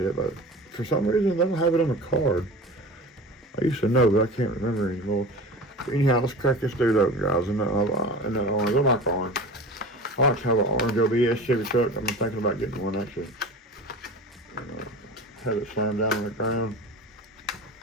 but for some reason they don't have it on the card. I used to know, but I can't remember anymore. But anyhow, let's crack this dude open, guys. And that orange, I like orange. I like to have an orange OBS Chevy truck. I'm thinking about getting one actually. Have it slammed down on the ground.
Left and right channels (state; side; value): normal; both; correlation 0.35